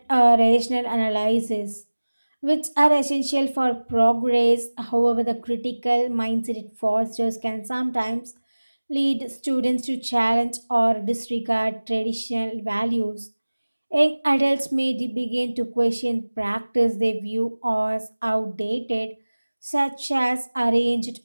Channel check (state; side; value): inverted; both; correlation -1.00